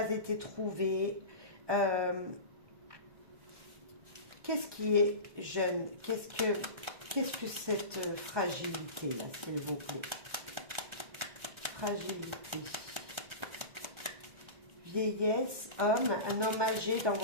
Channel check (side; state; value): left; late; 1.4 ms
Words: été trouvé. Qu'est-ce qui est jeune? Qu'est-ce que cette fragilité-là, s'il vous plaît? Fragilité. Vieillesse, homme, un homme âgé dans